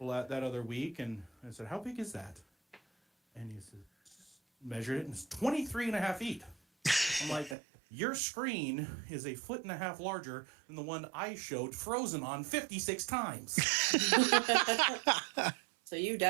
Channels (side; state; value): left; drops out; at 7.6 s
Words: other week, and I said, how big is that? And he said, measured it, and it's 23 and a half feet. I'm like, your screen is 1.5 feet larger than the one I showed Frozen on 56 times. So you